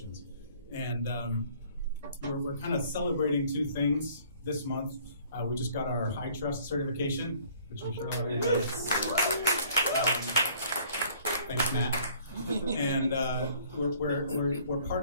And we're kind of celebrating two things this month. We just got our high trust certification, which I'm sure everybody knows. Thanks, Matt. And we're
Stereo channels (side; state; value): both; inverted; correlation -0.57